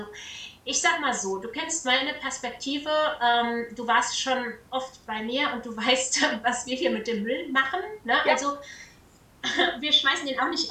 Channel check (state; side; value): identical; both; correlation 1.00